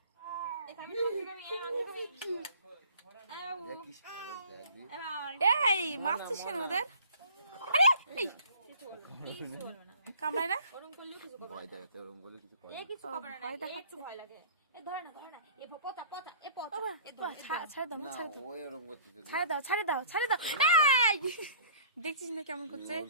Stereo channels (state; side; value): inverted; both; correlation -0.51